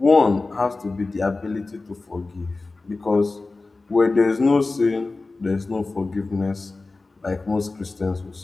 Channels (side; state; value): right; quieter; 3.5 dB